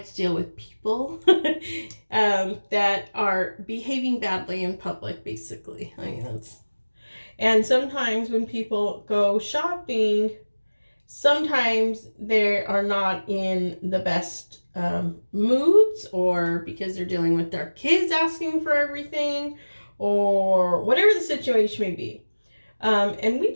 to deal with people that are behaving badly in public, basically. I mean, and sometimes when people go shopping, sometimes they are not in the best moods, or because they're dealing with their kids asking for everything, or whatever the situation may be. And we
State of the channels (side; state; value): both; inverted; correlation -1.00